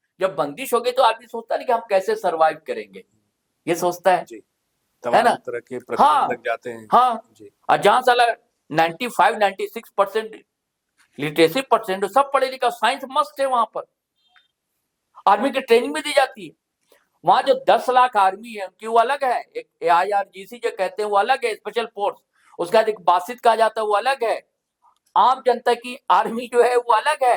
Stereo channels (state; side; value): identical; both; correlation 1.00